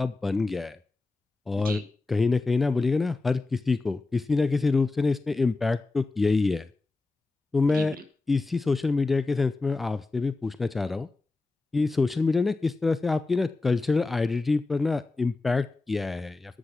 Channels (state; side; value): quieter; right; 3.5 dB